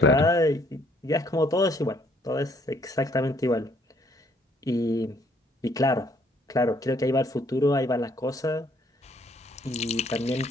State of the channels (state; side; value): normal; both; correlation 0.65